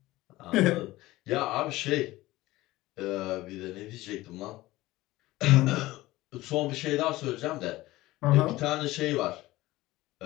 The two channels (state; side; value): quieter; right; 18.0 dB